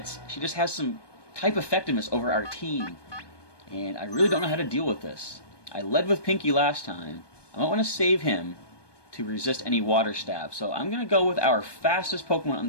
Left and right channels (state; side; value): late; right; 1.2 ms